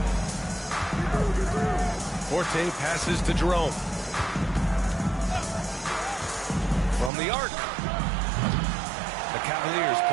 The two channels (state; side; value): drops out; left; at 7.1 s